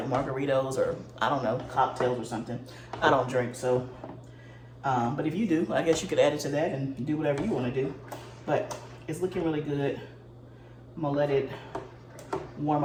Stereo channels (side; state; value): both; identical; correlation 1.00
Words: margaritas or I don't know, cocktails or something. I don't drink, so, but if you do, I guess you could add it to that and do whatever you wanna do. But it's looking really good. I'm gonna let it warm